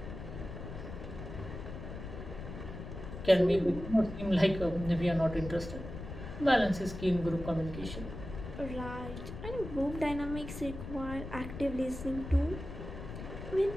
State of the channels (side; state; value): left; noise; rumble, 9 dB below the sound